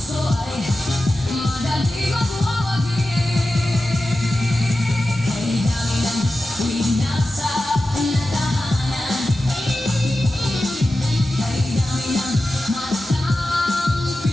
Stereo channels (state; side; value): normal; both; correlation 0.93